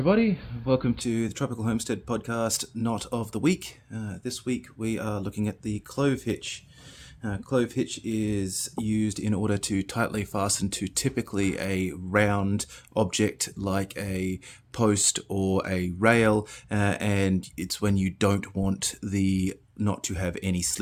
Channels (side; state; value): both; identical; correlation 1.00